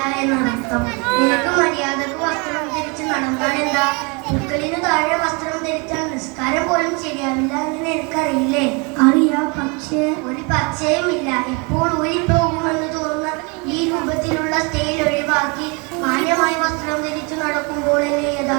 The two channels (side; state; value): left; quieter; 31.0 dB